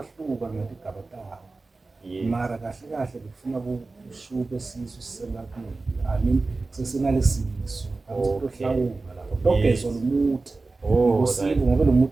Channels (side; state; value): left; quieter; 3.6 dB